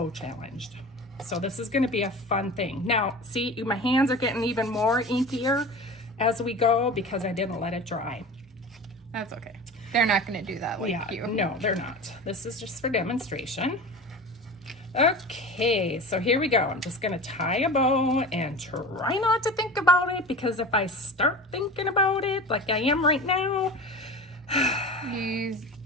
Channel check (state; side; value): normal; both; correlation 0.33